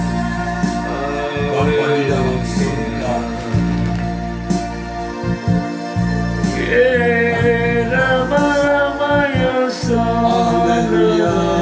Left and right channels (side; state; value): both; identical; correlation 1.00